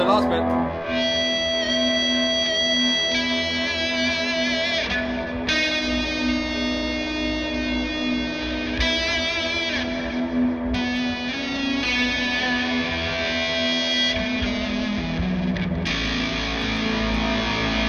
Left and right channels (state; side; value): identical; both; correlation 1.00